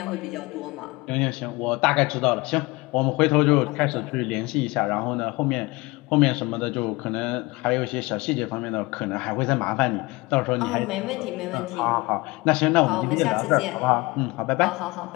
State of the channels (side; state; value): right; quieter; 23.3 dB